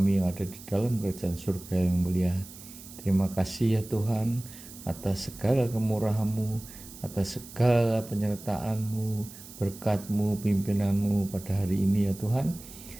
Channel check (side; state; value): right; noise; hiss, 17 dB below the sound